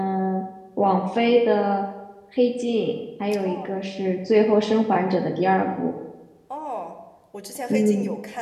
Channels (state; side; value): identical; both; correlation 1.00